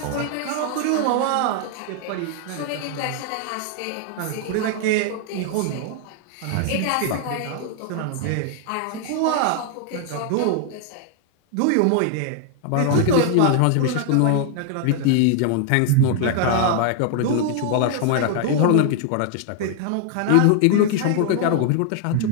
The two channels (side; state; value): both; different; correlation 0.00